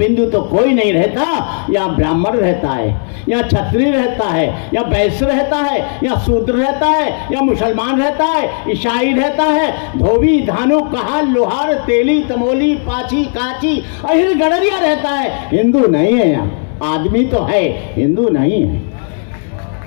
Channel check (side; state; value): right; silent; 58 dB below the other